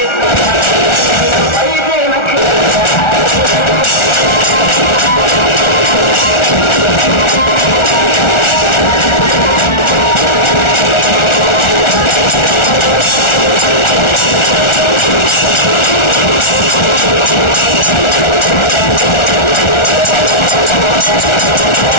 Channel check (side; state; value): right; late; 1.4 ms